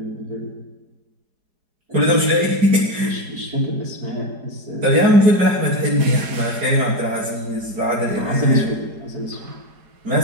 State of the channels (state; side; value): late; left; 4.8 ms